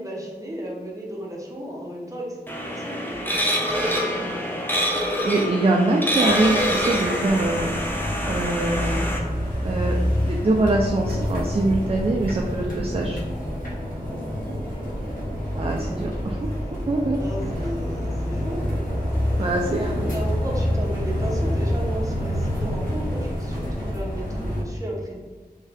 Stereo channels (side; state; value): both; normal; correlation 0.72